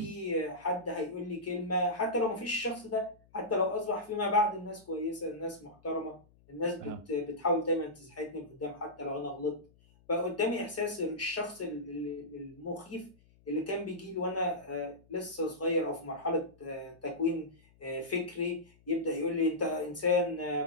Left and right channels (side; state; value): left; noise; hum, 29 dB below the sound